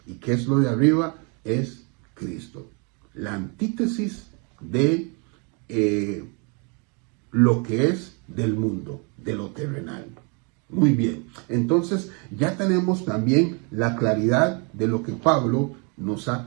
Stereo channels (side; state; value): left; quieter; 34.5 dB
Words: ¿Y qué es lo de arriba? Es Cristo. La antítesis de lo que es del mundo, de lo terrenal. Muy bien, entonces ya tenemos también la claridad de lo que Pablo nos ha